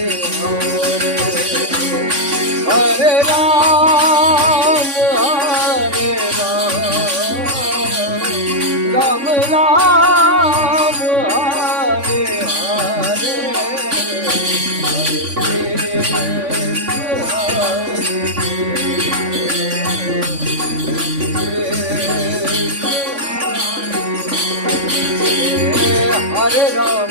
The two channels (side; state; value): left; late; 3.5 ms